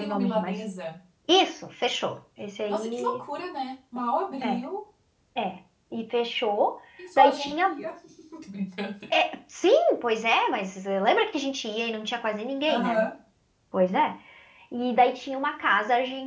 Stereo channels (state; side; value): identical; both; correlation 1.00